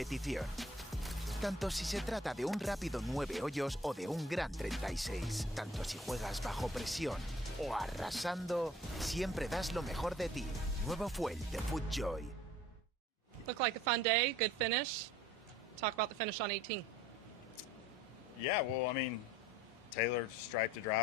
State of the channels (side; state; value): both; normal; correlation 0.52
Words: Tanto si se trata de un rápido 9 hoyos o de un gran 36. Tanto si juegas bajo presión o arrasando, siempre das lo mejor de ti. Nuevo Fuel de FootJoy. Looked like a fun day, good finish. Talk about the finish on 18. Yeah, well, I mean, Taylor striped the